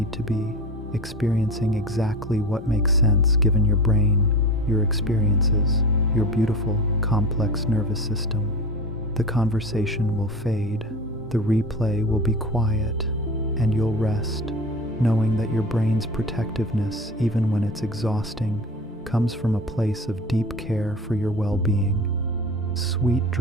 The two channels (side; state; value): both; normal; correlation 0.31